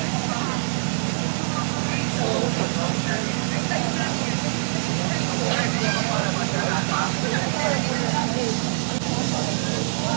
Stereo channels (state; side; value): silent; left; 63 dB below the other